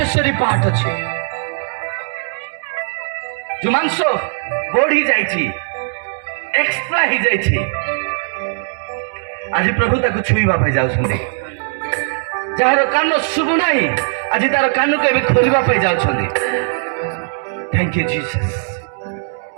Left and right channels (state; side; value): silent; left; digital silence